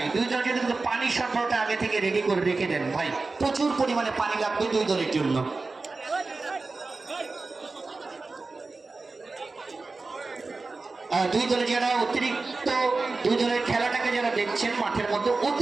দুই দল যদি পানি সরবরাহটা আগে থেকে রেডি করে রেখে দেন ভাই, প্রচুর পরিমাণে পানি লাগবে দুই দলের জন্য। দুই দলে যারা অতিরিক্ত দুই দলের খেলাটাকে যারা দেখছেন মাঠের মধ্যে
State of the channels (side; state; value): left; quieter; 3.7 dB